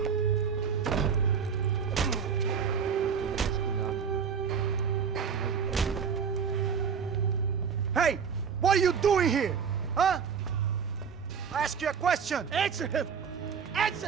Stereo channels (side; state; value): left; quieter; 6.7 dB